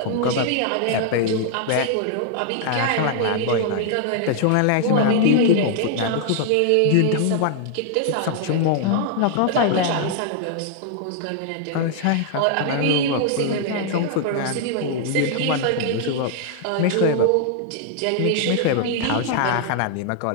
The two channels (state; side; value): different; both; correlation 0.00